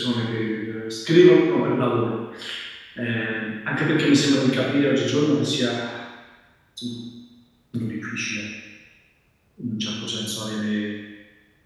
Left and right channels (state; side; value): identical; both; correlation 1.00